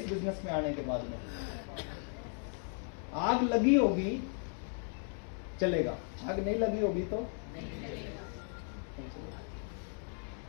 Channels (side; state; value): right; silent; 54 dB below the other